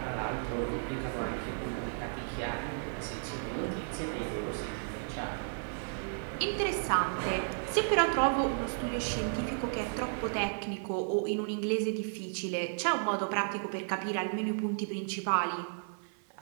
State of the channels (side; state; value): left; silent; 55 dB below the other